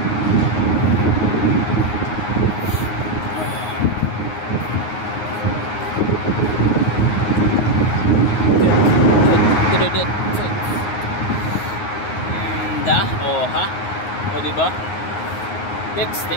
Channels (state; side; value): late; right; 9.5 ms